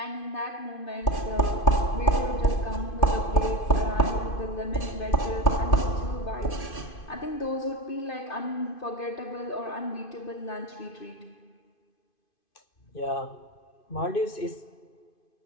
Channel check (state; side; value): late; right; 2.5 ms